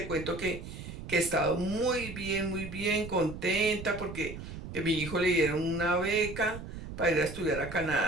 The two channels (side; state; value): right; noise; rumble, 10 dB below the sound